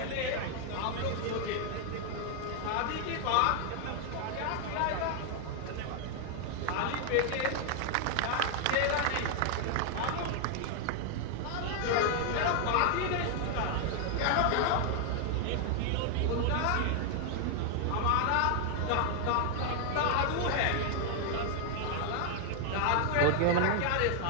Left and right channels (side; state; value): both; different; correlation 0.00